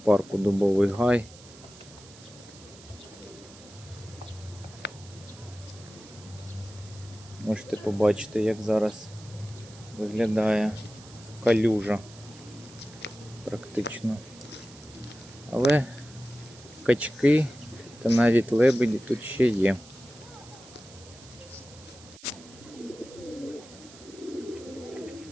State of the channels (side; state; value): right; noise; hiss, 21 dB below the sound